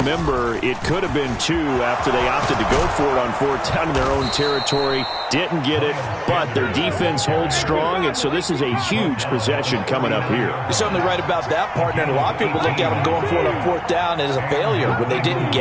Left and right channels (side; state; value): both; identical; correlation 1.00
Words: it could have been 2 after they opted to go for it on 4th down in their own territory. Didn't get it, but their defense holds strong, and so this is a huge possession coming up here. You're certainly right about that, partner. And a lot of people look at them going for it on 4th down as a failure when they didn't